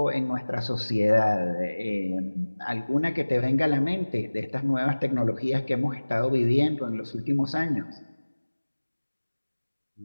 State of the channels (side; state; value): both; inverted; correlation -1.00